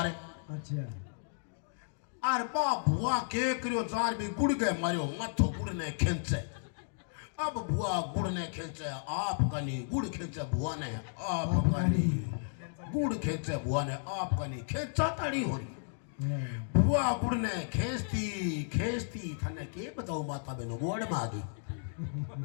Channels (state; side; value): silent; right; digital silence